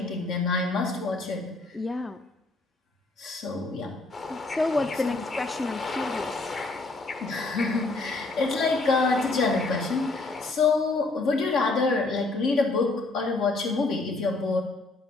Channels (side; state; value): right; quieter; 3.3 dB